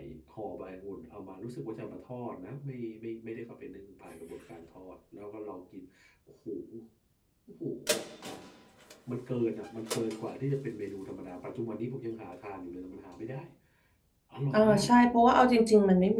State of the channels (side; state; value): both; identical; correlation 1.00